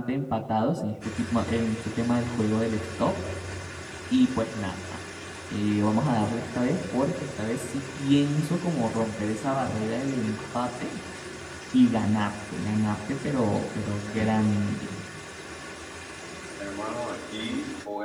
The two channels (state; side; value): identical; both; correlation 1.00